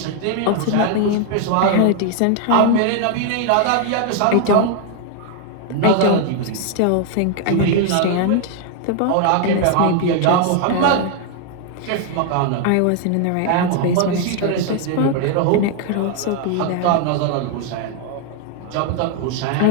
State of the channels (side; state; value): both; different; correlation 0.00